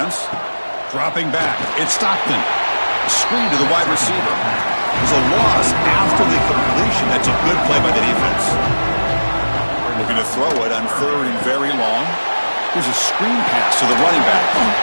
Dropping back. It's Stockton. Screen to the wide receiver. There's a loss after the completion. That's a good play by the defense. Looking to throw it on 3rd and very long. There's a screen pass to the running back.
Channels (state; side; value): inverted; both; correlation -1.00